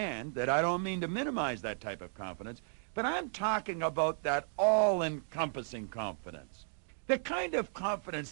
that I don't mean to minimize that type of confidence, but I'm talking about that all-encompassing confidence. The kind of confidence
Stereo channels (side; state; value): left; silent; digital silence